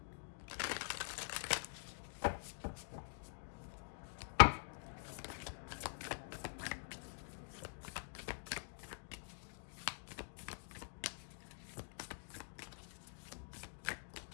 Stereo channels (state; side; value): silent; right; digital silence